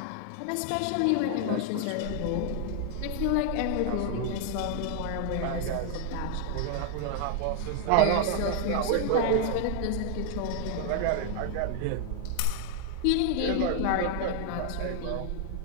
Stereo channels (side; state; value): both; different; correlation 0.00